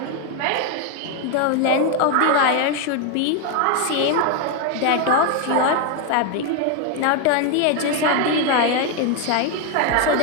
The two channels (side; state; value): both; different; correlation 0.01